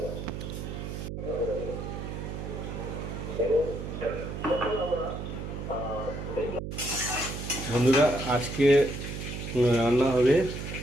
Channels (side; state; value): right; noise; hum, 6 dB below the sound